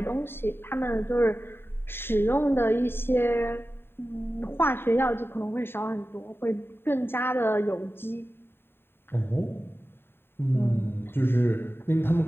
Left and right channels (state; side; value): late; right; 0.11 ms